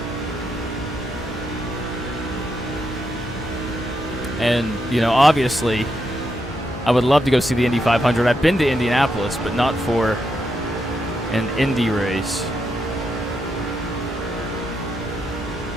And you know, obviously, I would love to go see the Indy 500. I've been to Indianapolis, but not for an Indy race.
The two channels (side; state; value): both; normal; correlation 0.82